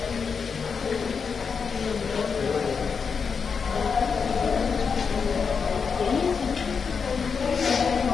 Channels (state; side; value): quieter; right; 5.8 dB